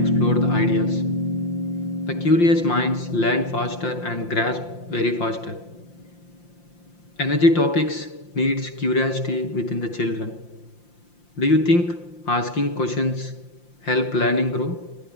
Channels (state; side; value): late; right; 5.8 ms